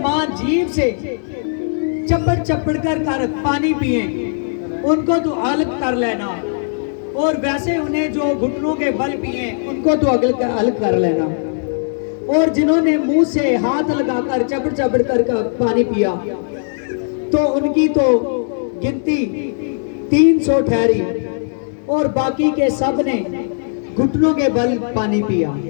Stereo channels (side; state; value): right; silent; digital silence